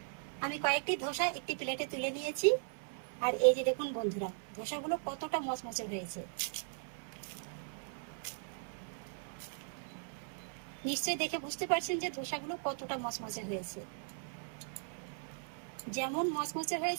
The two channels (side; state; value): left; silent; 52 dB below the other